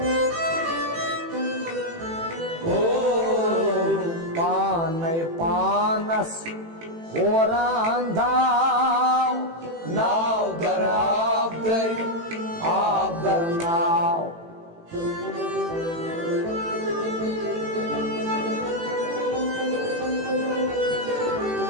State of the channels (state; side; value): late; left; 18 ms